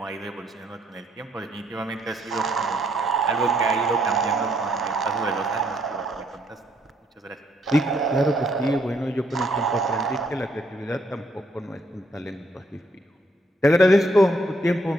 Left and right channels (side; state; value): both; normal; correlation 0.70